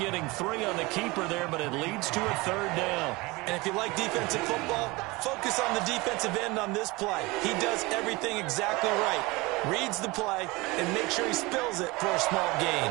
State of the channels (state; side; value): quieter; left; 23.3 dB